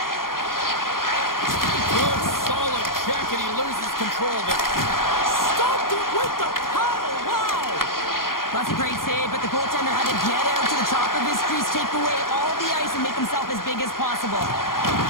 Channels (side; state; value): right; late; 0.91 ms